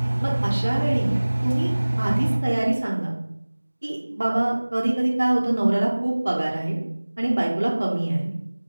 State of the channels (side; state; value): both; inverted; correlation -1.00